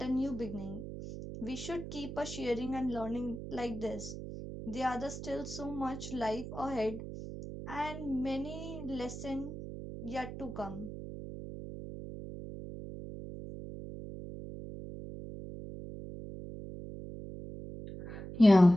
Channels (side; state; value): right; noise; hum, 9 dB below the sound